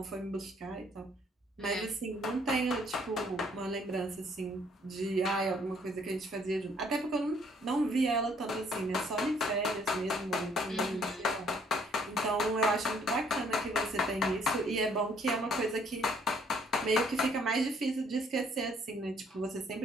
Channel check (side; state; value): both; normal; correlation 0.64